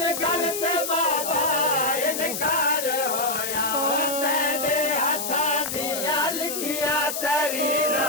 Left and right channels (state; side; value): noise; left; hiss, 4 dB below the sound